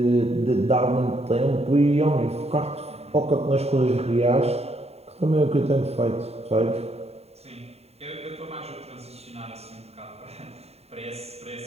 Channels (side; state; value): left; late; 0.30 ms